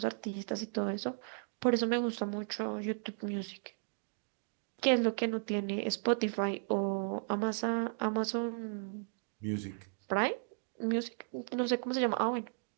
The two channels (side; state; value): left; silent; digital silence